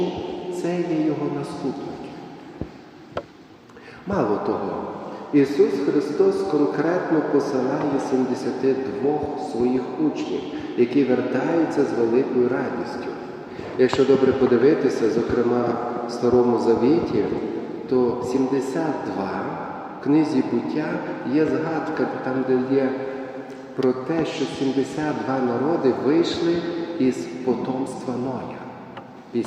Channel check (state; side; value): identical; both; correlation 1.00